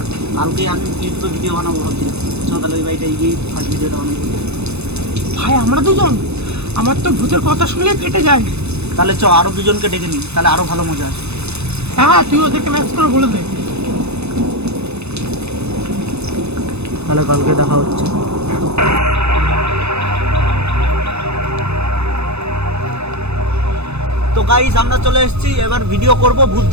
কালকে আমি ইউটিউবে ভিডিও বানাবো ভাবছি, চল তাহলে ওই বাড়িটা গিয়ে ফার্স্ট ভিডিওটা বানাবো। ভাই আমরা দুজন, আমার তো ভূতের কথা শুনলে ফেটে যায়। তাহলে চ আরো দুজনকে ডেকে নিই, তাহলে আরো ভালো মজা আসে। হ্যাঁ তুই ওদেরকে ম্যাচ করে বলে দে। তাহলে কালকে দেখা হচ্ছে। তো গাইস আমরা চলে এসেছি, এবার ভিডিও করব, ভূত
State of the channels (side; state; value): left; late; 0.80 ms